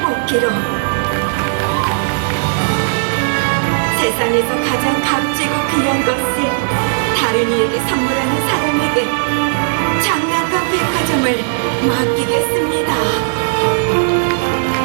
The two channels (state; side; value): silent; left; digital silence